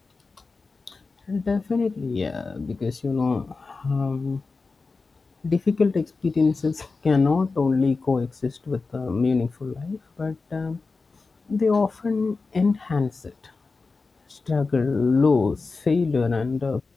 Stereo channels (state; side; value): quieter; right; 4.1 dB